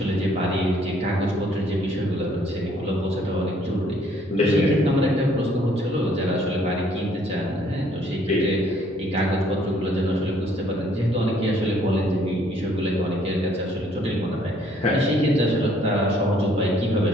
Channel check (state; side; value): normal; both; correlation 0.63